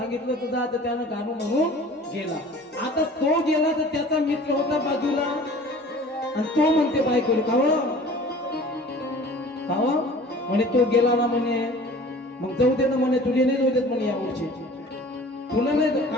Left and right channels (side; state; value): both; normal; correlation 0.45